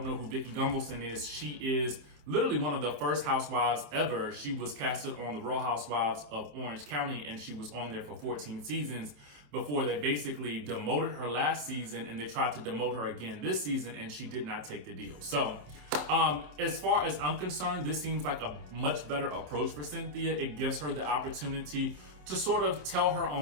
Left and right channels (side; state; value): left; late; 27 ms